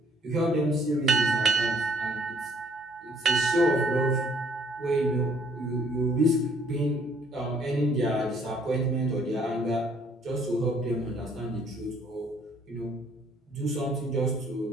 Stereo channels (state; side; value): normal; both; correlation 0.62